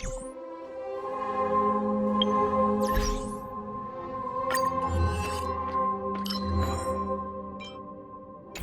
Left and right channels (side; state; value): both; identical; correlation 1.00